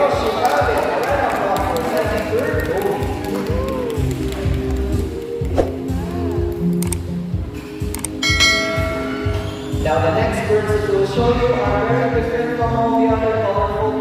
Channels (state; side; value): identical; both; correlation 1.00